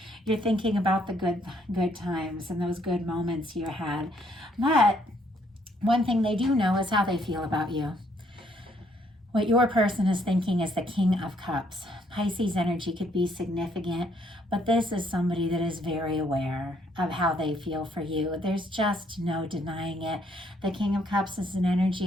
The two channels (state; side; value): normal; both; correlation 0.68